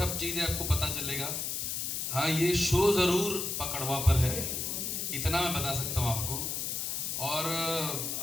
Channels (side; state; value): left; noise; hiss, 2 dB below the sound